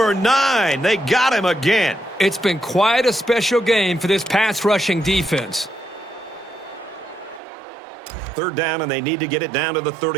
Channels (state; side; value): drops out; left; at 7.4 s